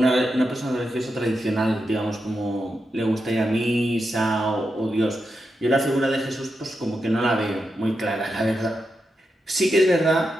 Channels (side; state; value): both; normal; correlation 0.87